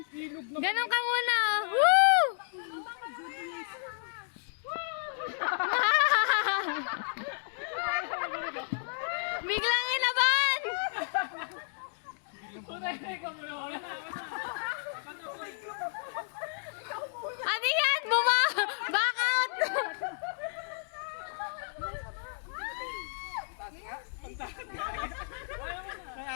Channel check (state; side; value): silent; right; digital silence